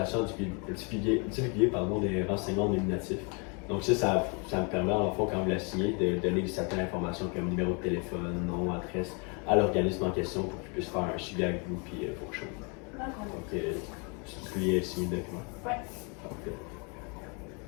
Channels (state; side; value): quieter; right; 34.4 dB